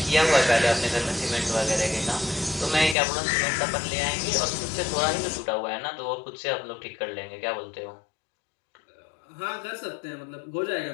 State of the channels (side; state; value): right; drops out; at 3.0 s